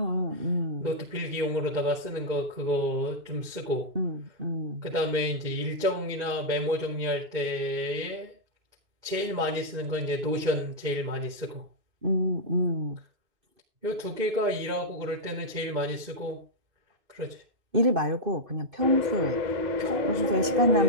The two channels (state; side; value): late; left; 2.2 ms